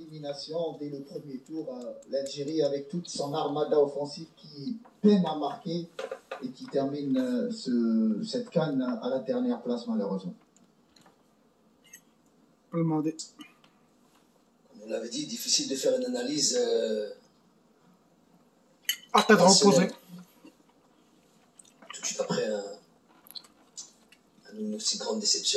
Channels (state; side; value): identical; both; correlation 1.00